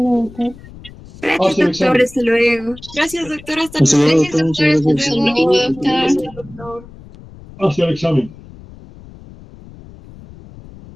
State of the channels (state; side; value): noise; left; rumble, 19 dB below the sound